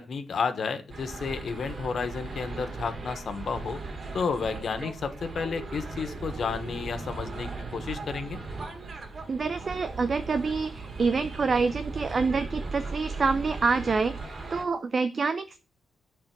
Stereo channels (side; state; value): both; normal; correlation 0.85